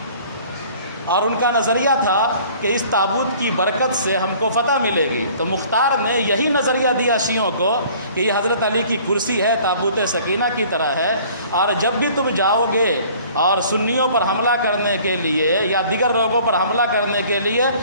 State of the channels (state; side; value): inverted; both; correlation -0.52